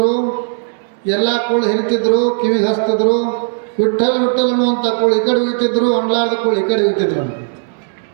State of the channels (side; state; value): left; silent; digital silence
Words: ಎಲ್ಲ ಕೂಳು ಹಿರಿತಿದ್ರು, ಕಿವಿಗೆ ಹಚ್ತಿದ್ರು. ವಿಠಲ್ ಅನ್ನುವಂಥ ಕೂಳು ಈ ಕಡೆ ಹೋಗ್ತಿದ್ರು, ಅಣ್ಲಾರ್ದ ಕೂಳು ಈ ಕಡೆ ಹೋಗ್ತಿದ್ರು.